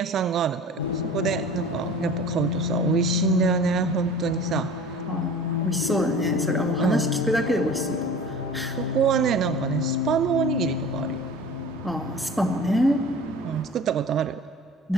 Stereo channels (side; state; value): both; normal; correlation 0.40